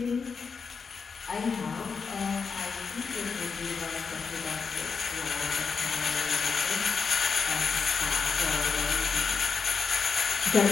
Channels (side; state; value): right; quieter; 5.4 dB